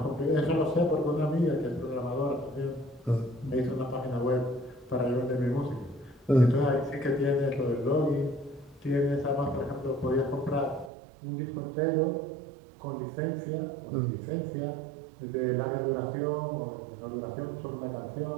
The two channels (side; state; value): left; drops out; at 10.9 s